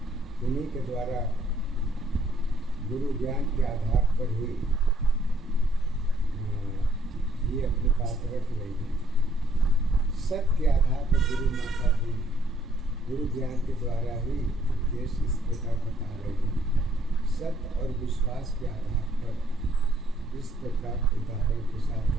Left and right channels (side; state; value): both; normal; correlation 0.66